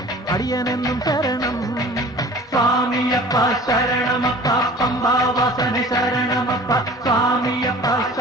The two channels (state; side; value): normal; both; correlation 0.45